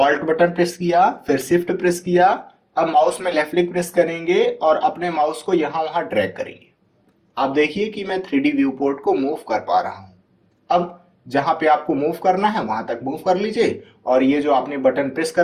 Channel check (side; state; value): both; identical; correlation 1.00